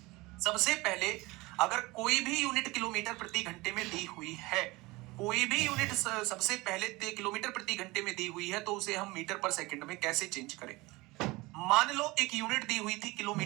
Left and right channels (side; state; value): left; quieter; 22.1 dB